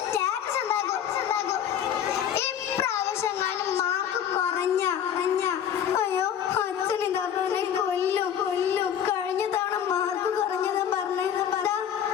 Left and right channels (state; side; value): quieter; right; 9.2 dB